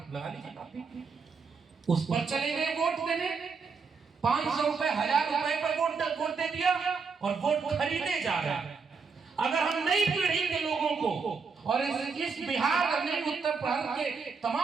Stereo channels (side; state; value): left; quieter; 5.1 dB